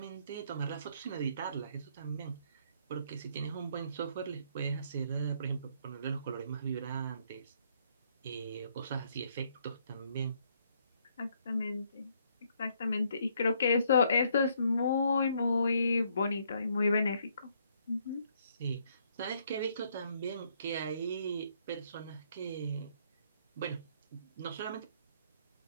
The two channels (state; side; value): inverted; both; correlation -0.69